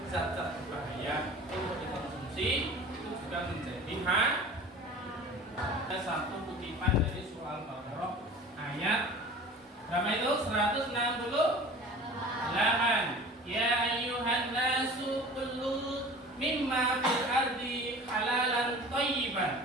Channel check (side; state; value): both; normal; correlation 0.41